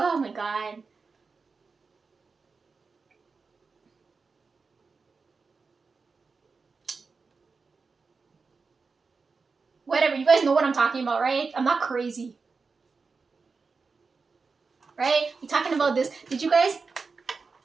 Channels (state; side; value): quieter; left; 4.6 dB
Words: my god. Whatever, you guys know what I'm talking about, right? I'm not crazy. Right? We're talking about this. Did you guys...